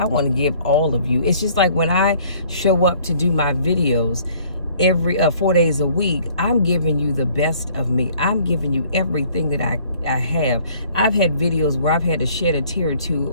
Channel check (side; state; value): both; inverted; correlation -0.57